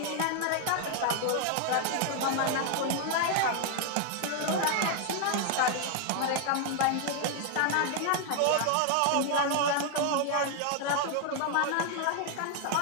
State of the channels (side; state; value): both; different; correlation 0.00